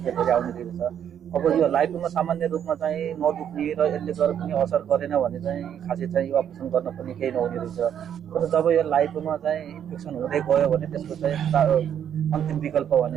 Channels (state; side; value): quieter; left; 9.2 dB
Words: धेरै आउने रहेछ। अब यो लाइकोमा सामान्य रूपमा चाहिँ नदुख्ने र यसले गरेर पनि असर गरेन भने चाहिँ खासै चाहिँ यो अपरेसन गर्न पनि केही नहुने रहेछ। तर जब यो लाइकोमा चाहिँ इन्फेक्सन हुँदै गयो भने त्यसको चाहिँ अन्तिम विकल्प